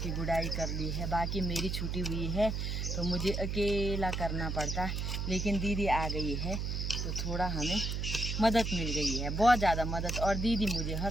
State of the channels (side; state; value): right; noise; hum, 1 dB below the sound